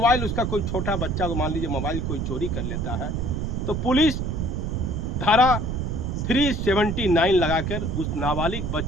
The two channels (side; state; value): right; noise; rumble, 2 dB below the sound